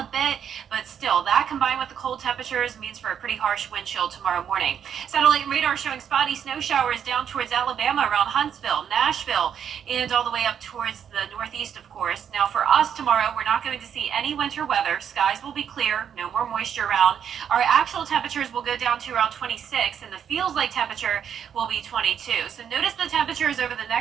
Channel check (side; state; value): left; quieter; 8.4 dB